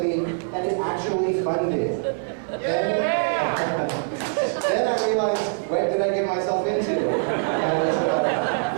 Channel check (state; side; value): silent; left; digital silence